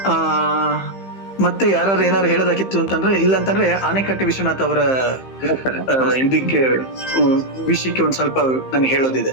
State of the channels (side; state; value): right; late; 15 ms